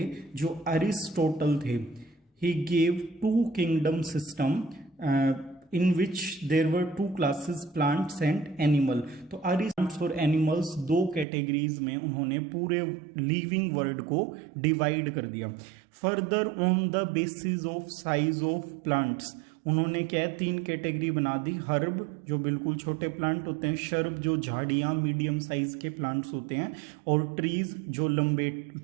जो अरिस्टोटल थे, he gave two kingdom system in which there were two classes, plants and animal। तो plants और animals दो कैटेगरीज में उन्होंने पूरे लिविंग वर्ल्ड को डिवाइड कर दिया। Further on the basis of size of plants उन्होंने क्या है, तीन कैटेगरी बना दी। हर्ब जो बिल्कुल छोटे प्लांट होते हैं, शर्ब जो झाड़ियां मीडियम साइज के प्लांट्स होते हैं, और ट्रीज जो लंबे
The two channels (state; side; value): drops out; left; at 11.2 s